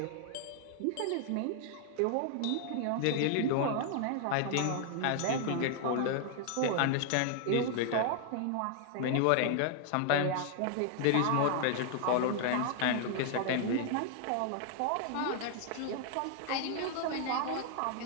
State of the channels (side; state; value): both; different; correlation 0.00